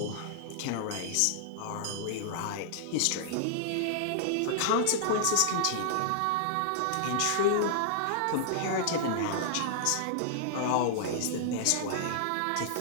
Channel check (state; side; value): different; both; correlation -0.01